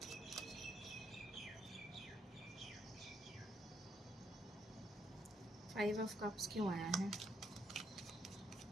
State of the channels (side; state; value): both; normal; correlation 0.74